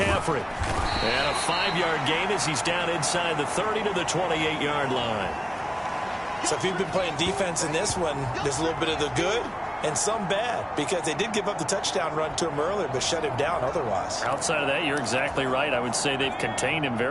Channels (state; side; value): identical; both; correlation 1.00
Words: And a 5-yard gain as he's down inside the 30 to the 28-yard line. So if you've been playing defense in this one, there's a little bit of the good and some bad, because they did give up the touchdown run to him earlier, but shut him down otherwise. Outside of that, you're exactly right. I would say they've contained him